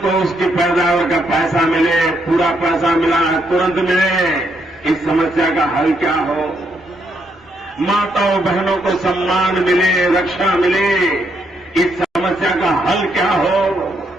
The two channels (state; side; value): normal; both; correlation 0.76